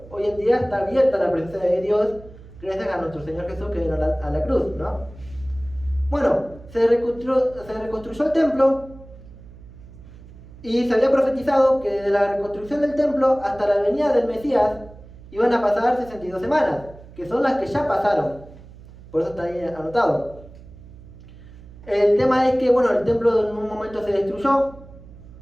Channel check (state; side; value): noise; right; hum, 19 dB below the sound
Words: Hoy en día está abierta la presencia de Dios gracias a nuestro Señor Jesús que vino a la cruz, ¿no? Bueno, se reconstruyó el templo y se había profetizado que de la reconstrucción del templo hasta la venida del Mesías iban a pasar 62 semanas, que son las que ya pasaron. Por eso está ahí anotado. El tema es que, bueno, el templo en un momento se destruyó,